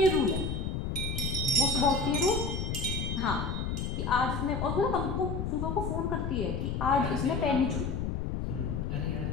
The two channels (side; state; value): left; noise; rumble, 2 dB below the sound